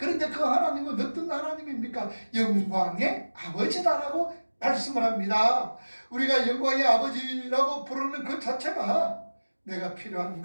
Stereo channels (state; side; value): inverted; both; correlation -1.00